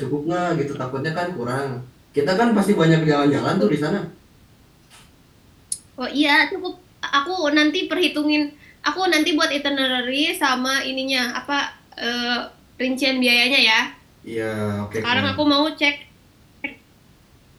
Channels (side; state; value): both; identical; correlation 1.00